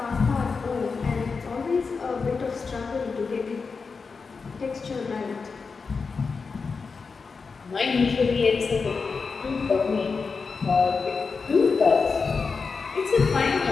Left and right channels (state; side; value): quieter; right; 4.9 dB